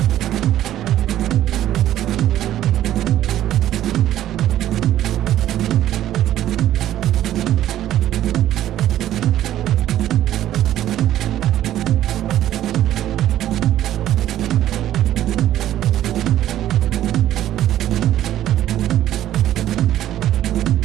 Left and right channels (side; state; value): left; quieter; 12.5 dB